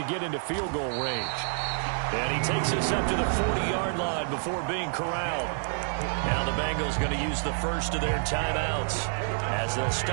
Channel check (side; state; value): left; silent; 59 dB below the other